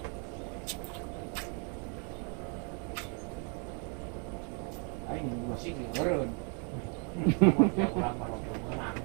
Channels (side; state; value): left; quieter; 38.2 dB